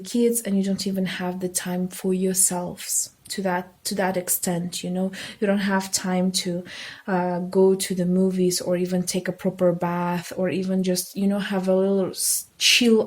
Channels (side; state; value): both; identical; correlation 1.00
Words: and you don't even have the time for yourselves. to that extent, you know. You don't have time to go to the movies, or even take a proper bath, or even just, you know, have a little